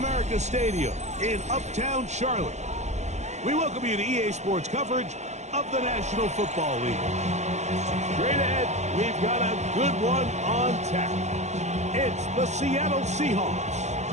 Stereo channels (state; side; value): late; left; 0.33 ms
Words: Stadium in Uptown Charlotte. We welcome you to EA Sports coverage of the National Football League. Straight ahead, we've got a good one on tap. It's the Seattle Seahawks